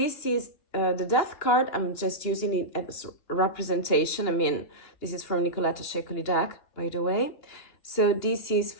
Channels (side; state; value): right; late; 2.9 ms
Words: is the death card. I'm just using it as representation. This is from Nicoletta Ceccoli deck, by the way. So this is